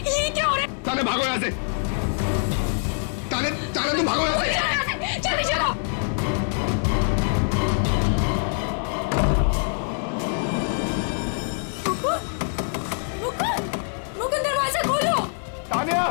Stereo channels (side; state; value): right; silent; digital silence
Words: क्या हो रहा है? तान्या भागो यहाँ से। तान्या तुम भागो यहाँ से। जल्दी चलो। मुकुंद, दरवाजा खोलो। Tanya,